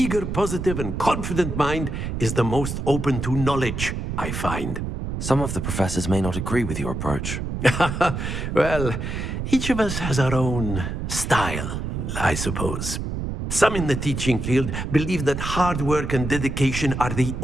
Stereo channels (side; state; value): right; noise; rumble, 4 dB below the sound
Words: positive, and confident mind is the most open to knowledge, I find. Some of the professors may not agree with your approach. Well, each of us has our own style, I suppose. Some in the teaching field believe that hard work and dedication are the